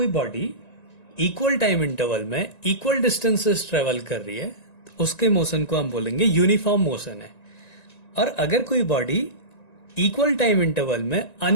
बॉडी इक्वल टाइम इंटरवल में इक्वल डिस्टेंसेस ट्रेवल कर रही है तो उसके मोशन को हम बोलेंगे यूनिफॉर्म मोशन है। और अगर कोई बॉडी इक्वल टाइम इंटरवल में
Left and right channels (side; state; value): right; late; 1.9 ms